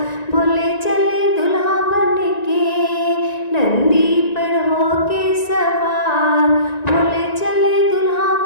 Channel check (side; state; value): right; late; 1.9 ms